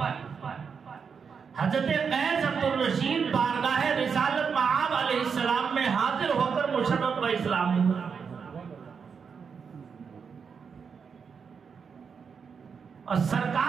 حضرت قیس عبد الرشید بارگاہ رسالت معاب علیہ السلام میں حاضر ہو کر مشرف و اسلام ہوا. اور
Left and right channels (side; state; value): left; quieter; 6.1 dB